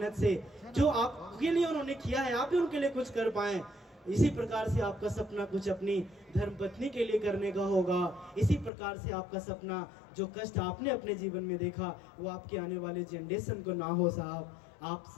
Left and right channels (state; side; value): drops out; right; at 8.7 s